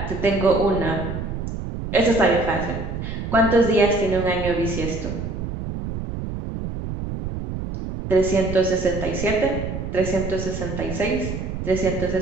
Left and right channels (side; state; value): right; noise; rumble, 6 dB below the sound